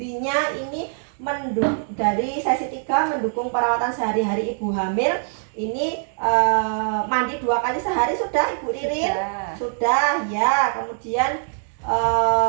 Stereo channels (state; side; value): silent; left; 64 dB below the other